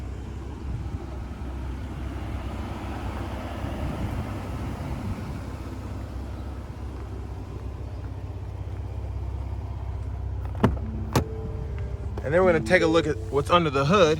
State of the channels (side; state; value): both; identical; correlation 1.00